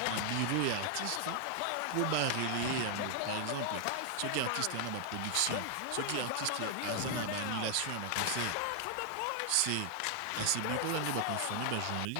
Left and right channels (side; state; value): both; different; correlation 0.00